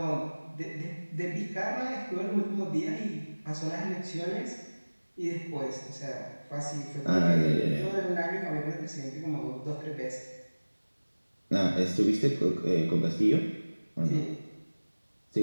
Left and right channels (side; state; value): both; inverted; correlation -1.00